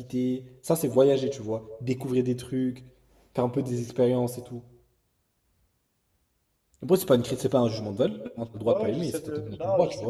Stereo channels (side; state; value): both; identical; correlation 1.00